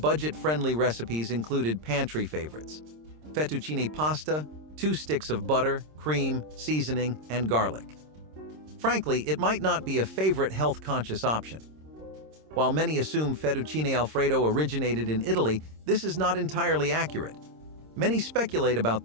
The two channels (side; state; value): left; late; 26 ms